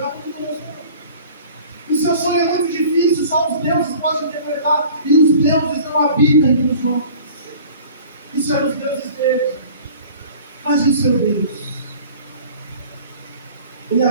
o seu sonho é muito difícil, só os deuses podem interpretar, e os deuses não habitam entre os homens. Isso eram os deuses deles. Mas e o seu Deus? Ele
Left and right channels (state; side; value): inverted; both; correlation -0.46